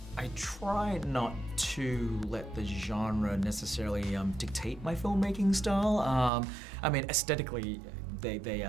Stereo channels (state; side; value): drops out; left; at 6.3 s